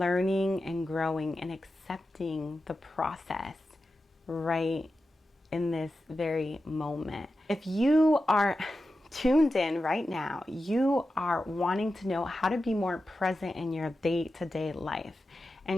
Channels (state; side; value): normal; both; correlation 0.92